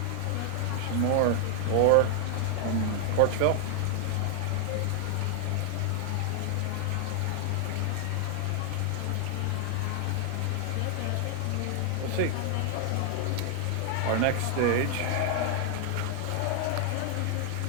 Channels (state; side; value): different; both; correlation 0.00